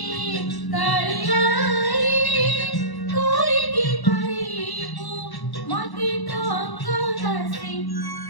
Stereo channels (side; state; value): right; late; 1.1 ms